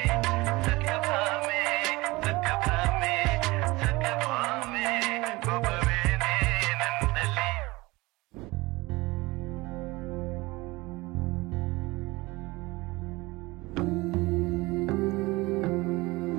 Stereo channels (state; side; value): quieter; left; 22.0 dB